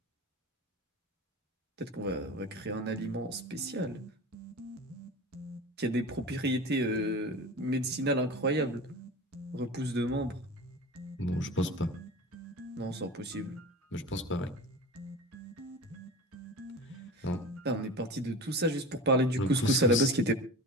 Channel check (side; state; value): both; normal; correlation 0.33